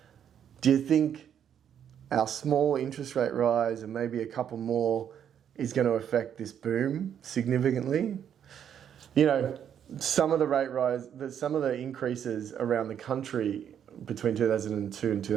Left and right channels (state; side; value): quieter; left; 9.0 dB